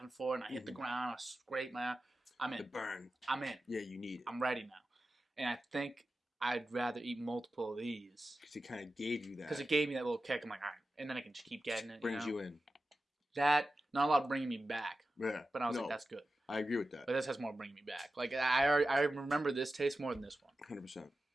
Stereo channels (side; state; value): both; normal; correlation 0.93